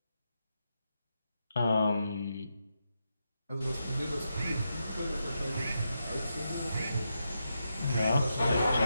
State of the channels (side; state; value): both; inverted; correlation -0.85